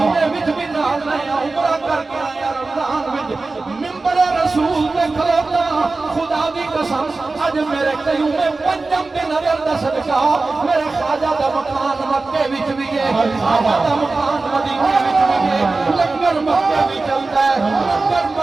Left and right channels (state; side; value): quieter; left; 3.6 dB